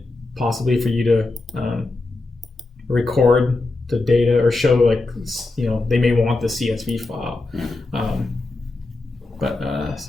possibly for you to record the data or show, they may want the CSV file.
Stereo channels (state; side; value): quieter; right; 3.1 dB